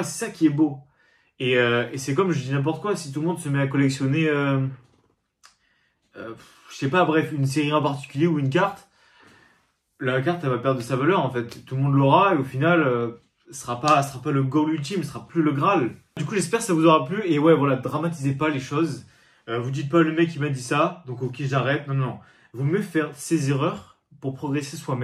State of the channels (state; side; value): identical; both; correlation 1.00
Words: c'est ça qui est beau. Et c'est comme je dis n'importe quoi, si tout le monde se met à collectionner, je sais pas, bref, une série en particulier ou une carte, la carte elle va perdre de sa valeur en fait. Tout le monde l'aura et au final, ce sera pas le goal ultime, ce sera plus le Graal. Du coup, j'espère que ça vous aura plu et ouais, voilà, dramatisez pas les choses. Vous dites pas le mec il m'a dit ça, donc ok j'arrête. Non, non, non. Vaut mieux faire ses erreurs pour progresser